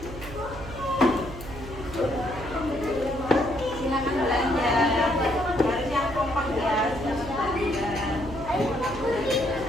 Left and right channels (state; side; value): noise; right; hum, 12 dB below the sound